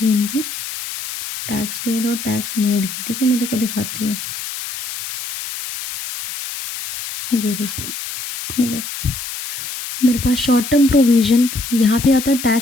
इनकी, टैक्स पेड और टैक्स मेड की, ठीक है? मैं तेरे को दिखाती हूँ। ये देख, मेरे पास शॉर्ट टर्म प्रोविज़न यहाँ पे आता है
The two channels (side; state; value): left; noise; hiss, 8 dB below the sound